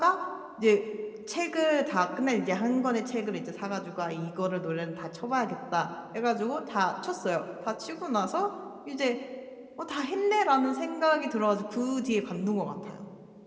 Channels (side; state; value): both; identical; correlation 1.00